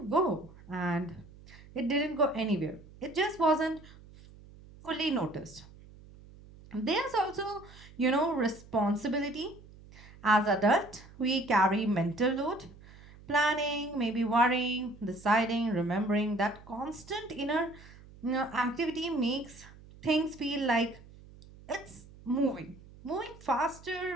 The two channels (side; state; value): right; noise; hum, 21 dB below the sound